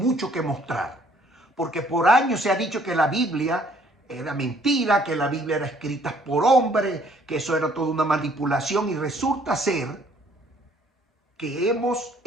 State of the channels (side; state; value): both; normal; correlation 0.61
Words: que mostrar, porque por años se ha dicho que la Biblia era mentira, que la Biblia era escrita por hombres, que eso era toda una manipulación, y resulta ser que hemos